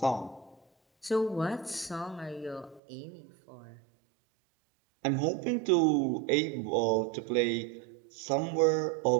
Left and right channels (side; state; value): left; drops out; at 2.8 s